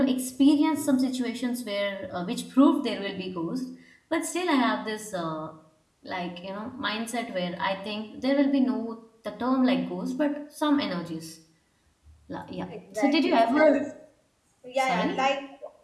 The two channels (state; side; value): identical; both; correlation 1.00